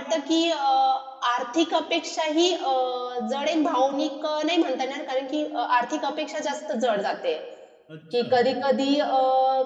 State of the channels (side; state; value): both; identical; correlation 1.00